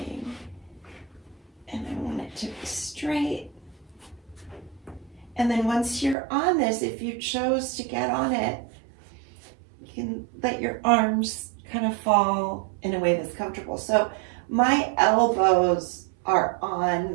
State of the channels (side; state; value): left; drops out; at 6.2 s